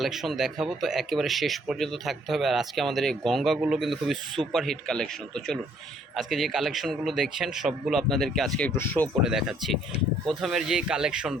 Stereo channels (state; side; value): normal; both; correlation 0.64